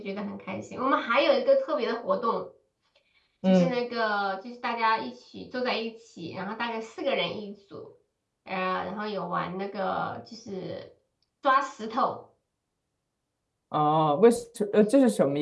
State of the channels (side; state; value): both; identical; correlation 1.00